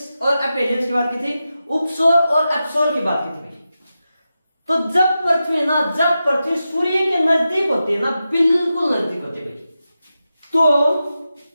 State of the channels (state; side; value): inverted; both; correlation -0.91